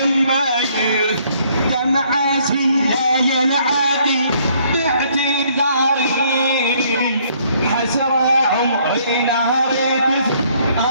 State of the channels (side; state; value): both; inverted; correlation -0.65